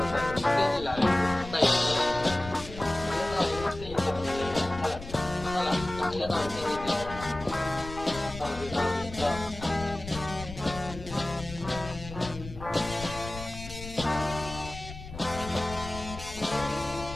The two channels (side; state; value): left; noise; rumble, 12 dB below the sound